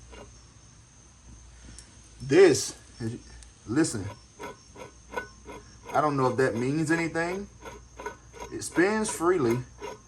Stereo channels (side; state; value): both; identical; correlation 1.00